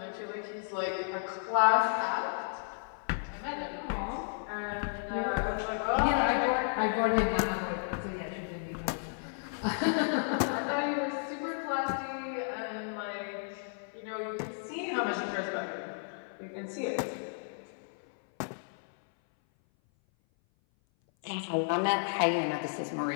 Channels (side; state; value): right; silent; 56 dB below the other